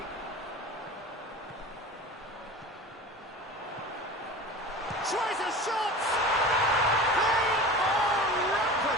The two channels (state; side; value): normal; both; correlation 0.35